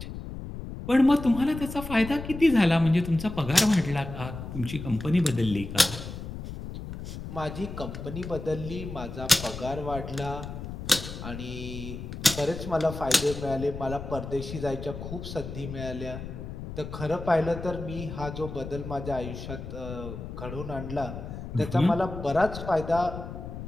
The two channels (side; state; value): left; noise; rumble, 9 dB below the sound